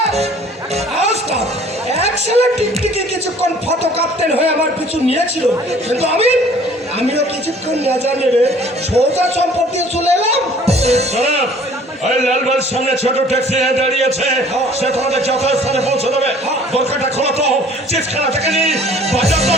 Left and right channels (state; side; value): normal; both; correlation 0.53